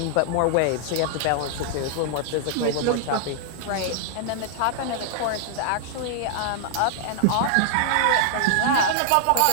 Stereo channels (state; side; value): different; both; correlation 0.00